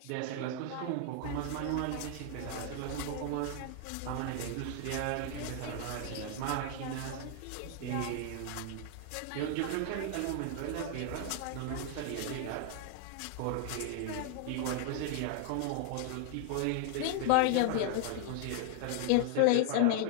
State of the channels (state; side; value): different; both; correlation 0.00